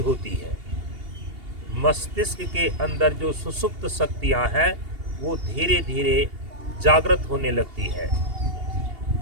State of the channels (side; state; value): left; late; 2.8 ms